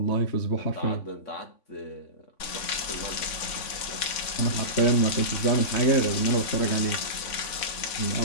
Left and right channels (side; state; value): right; late; 3.5 ms